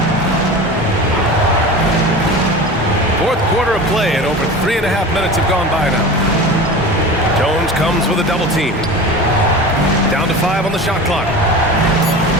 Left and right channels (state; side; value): normal; both; correlation 0.33